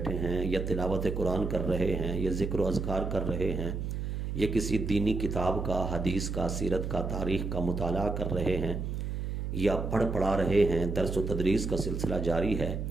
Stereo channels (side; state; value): right; noise; hum, 3 dB below the sound